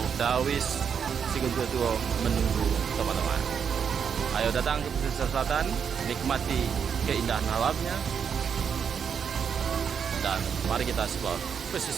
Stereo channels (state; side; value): quieter; left; 7.1 dB